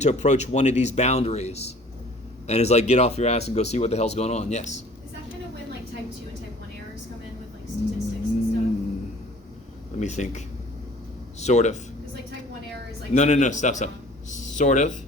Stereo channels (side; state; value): both; normal; correlation 0.50